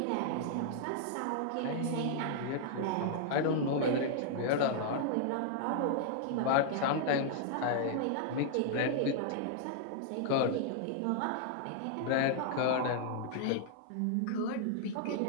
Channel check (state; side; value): different; both; correlation -0.01